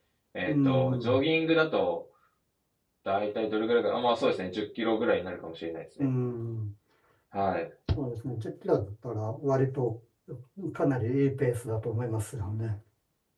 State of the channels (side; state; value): both; identical; correlation 1.00